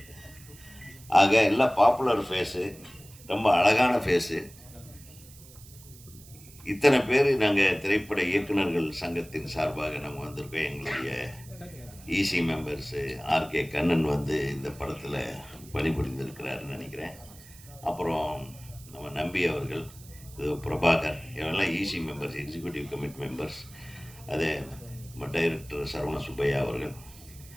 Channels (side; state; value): right; noise; hiss, 21 dB below the sound